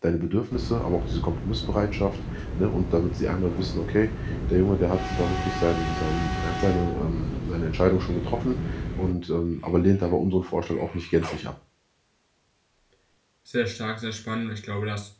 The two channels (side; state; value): both; identical; correlation 1.00